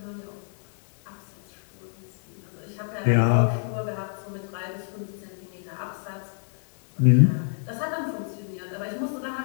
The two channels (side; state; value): right; silent; 60 dB below the other